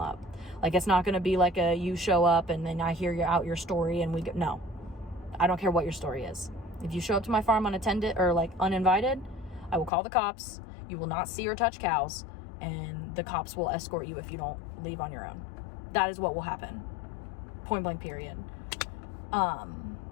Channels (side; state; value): right; drops out; at 9.9 s